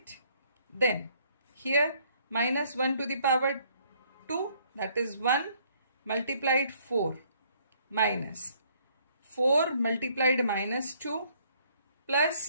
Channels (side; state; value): both; inverted; correlation -0.64